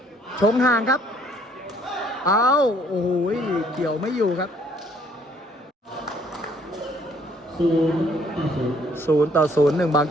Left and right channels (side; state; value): both; normal; correlation 0.63